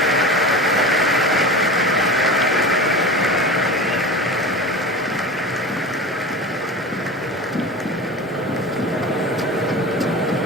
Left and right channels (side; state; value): both; normal; correlation 0.31